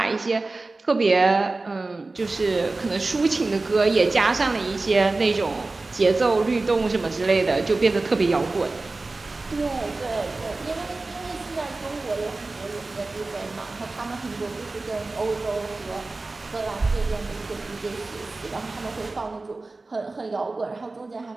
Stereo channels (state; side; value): quieter; left; 3.4 dB